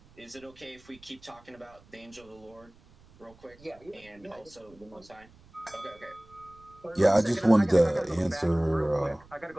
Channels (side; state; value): right; noise; rumble, 26 dB below the sound